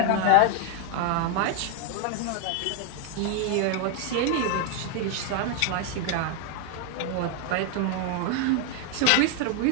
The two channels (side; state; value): both; different; correlation 0.00